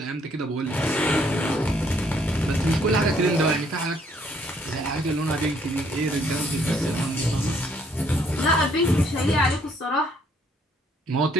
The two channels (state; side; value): normal; both; correlation 0.67